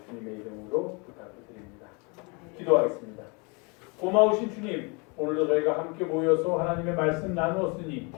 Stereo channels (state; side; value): quieter; right; 31.0 dB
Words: 주님의 이름으로 부탁을 드립니다. 기도하겠습니다. 고마우신 주님, 오늘도 저희가 함께 모여서 하나님의 말씀 나누었으니